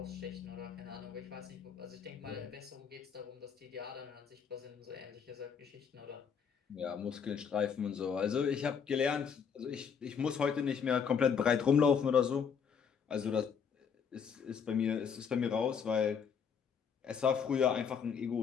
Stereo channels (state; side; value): quieter; right; 6.8 dB